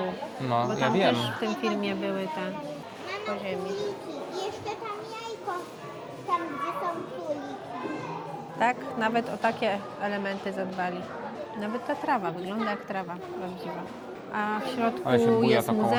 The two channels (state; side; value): identical; both; correlation 1.00